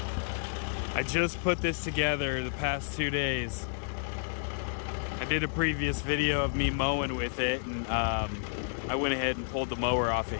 I just put this together the past 2 days. I did a previous video of me mowing with it, and I went ahead and pulled the mower off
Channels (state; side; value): silent; right; 57 dB below the other